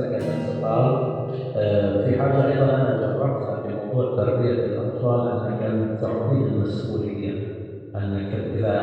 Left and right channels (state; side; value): identical; both; correlation 1.00